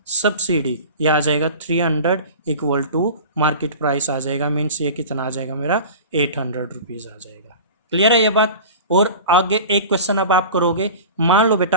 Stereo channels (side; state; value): both; inverted; correlation -0.35